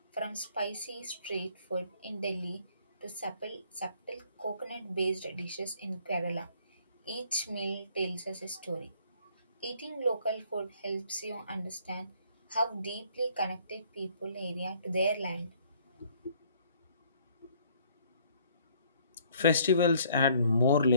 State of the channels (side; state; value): both; inverted; correlation -0.61